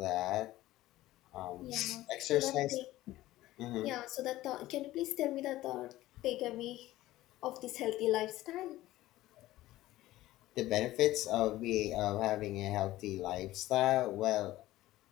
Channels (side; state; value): right; quieter; 16.1 dB